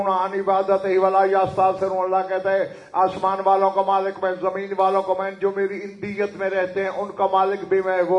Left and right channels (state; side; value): identical; both; correlation 1.00